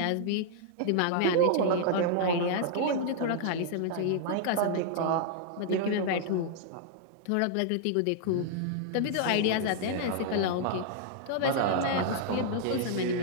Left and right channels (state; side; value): different; both; correlation -0.01